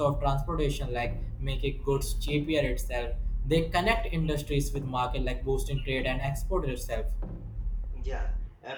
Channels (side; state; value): both; identical; correlation 1.00